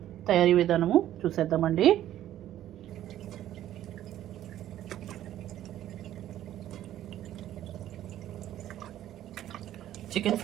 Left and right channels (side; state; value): left; quieter; 12.4 dB